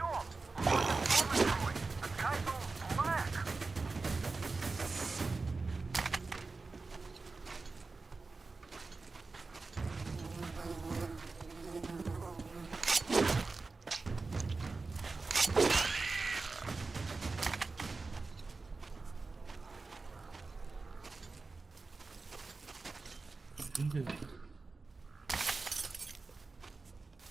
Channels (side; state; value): left; quieter; 3.9 dB